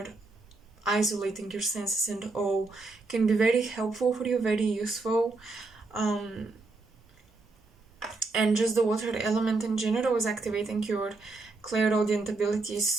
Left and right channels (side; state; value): left; quieter; 3.6 dB